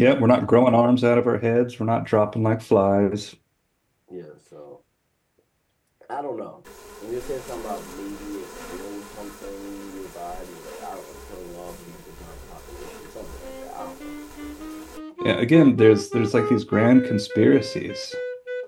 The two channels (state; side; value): identical; both; correlation 1.00